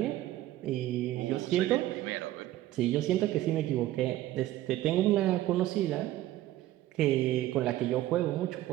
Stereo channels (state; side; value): quieter; left; 14.7 dB